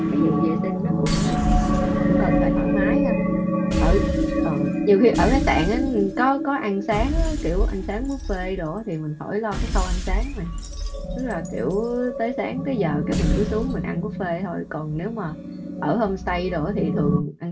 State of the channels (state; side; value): identical; both; correlation 1.00